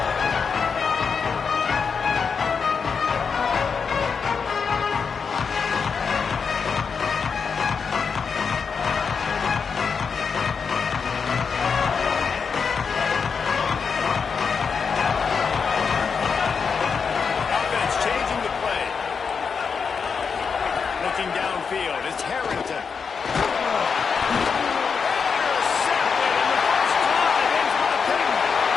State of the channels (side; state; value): right; quieter; 5.8 dB